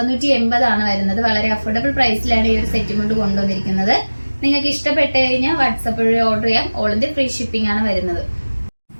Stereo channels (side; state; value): both; inverted; correlation -1.00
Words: ആണ് വരുന്നത്. വളരെ അഫോർഡബിൾ പ്രൈസിലാണ് ഈ ഒരു സെറ്റും കൊണ്ട് കൊണ്ടുവന്നിരിക്കുന്നത്. നിങ്ങൾക്ക് ഇഷ്ടപ്പെട്ടു കഴിഞ്ഞാൽ വാട്സപ്പ് വഴി ഓർഡർ ചെയ്യാം. ഓൾ ഇന്ത്യ ഫ്രീ ഷിപ്പിംഗ് ആണ് വരുന്നത്.